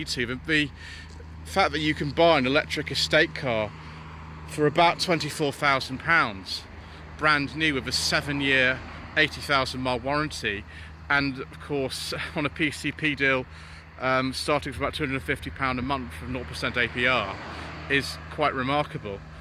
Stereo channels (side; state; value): both; identical; correlation 1.00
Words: to. But the fact that you can buy an electric estate car for about £24,000 brand new with a 7-year 80,000 mile warranty, and of course on a PCP deal starting from about £250 a month from 0% APR, is quite remarkable.